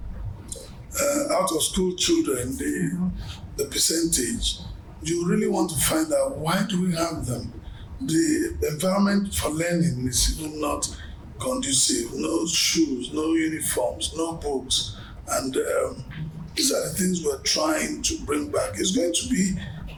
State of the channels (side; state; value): both; identical; correlation 1.00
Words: out of school children, the percentage, you really want to find out, why do we have them? The environment for learning is even not conducive. No shoes, no uniforms, no books, and these are the things we're trying to bring back. It's going to be